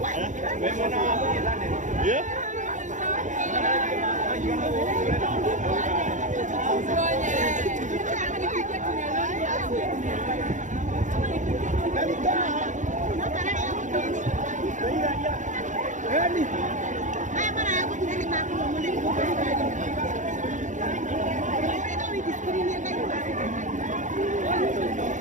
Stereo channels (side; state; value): left; late; 0.36 ms